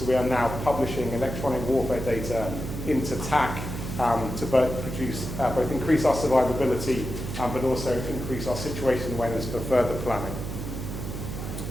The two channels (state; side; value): noise; right; hum, 6 dB below the sound